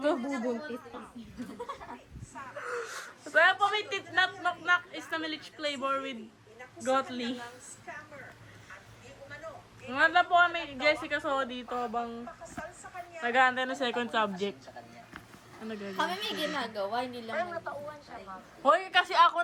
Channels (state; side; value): identical; both; correlation 1.00